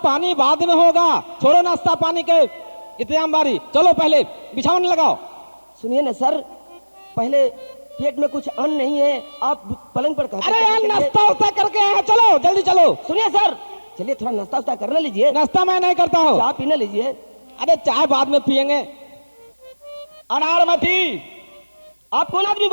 पानी बाद में होगा, छोड़ो नाश्ता पानी के इंतजाम बारी। चलो पहले बिछावन लगाओ। सुनिए ना सर, पहले पेट में कुछ अन्न नहीं है, आप पलंग पर कहते अरे यार, नाश्ता उस्ता करके आए हैं, चलो जल्दी चलो। सुनिए सर, चलिए थोड़ा नाश्ता उस्ता करने लीजिए। नाश्ता मैं नहीं करता हूँ। चाय पीने लीजिए। अरे चाय बाद में पियेंगे। अनारमती, आप कौन आदमी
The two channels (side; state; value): both; inverted; correlation -1.00